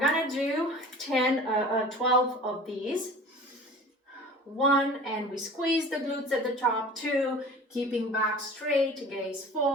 do 12 of these. 1, and we squeeze the glutes at the top. 2, keeping back straight, gaze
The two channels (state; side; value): normal; both; correlation 0.41